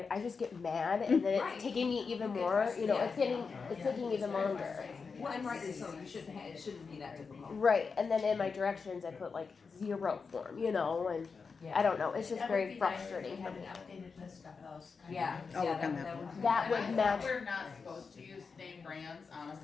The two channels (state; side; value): quieter; right; 5.1 dB